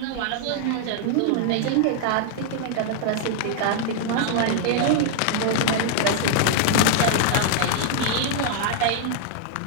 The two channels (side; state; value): both; different; correlation 0.00